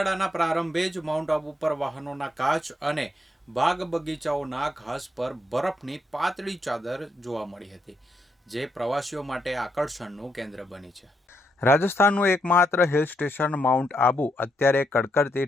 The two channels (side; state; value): both; normal; correlation 0.79